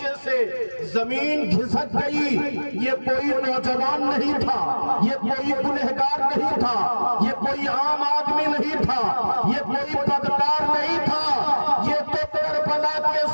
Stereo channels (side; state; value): both; inverted; correlation -1.00